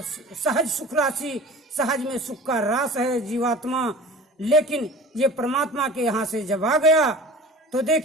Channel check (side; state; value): both; normal; correlation 0.40